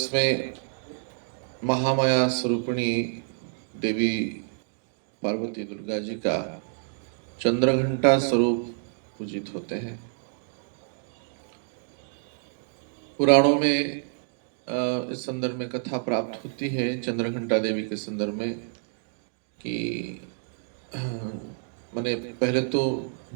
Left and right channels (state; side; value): silent; left; digital silence